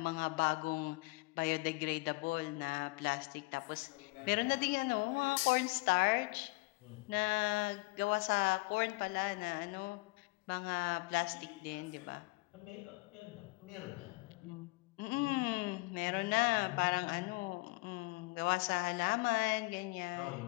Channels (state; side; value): quieter; right; 26.1 dB